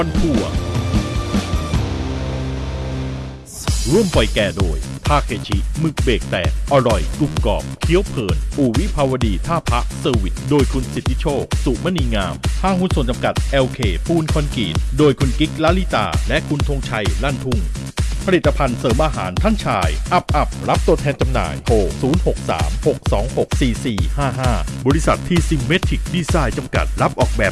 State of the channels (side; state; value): both; identical; correlation 1.00